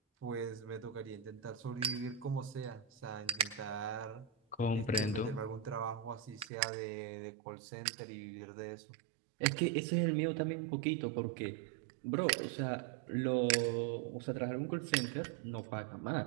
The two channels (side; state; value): left; drops out; at 6.5 s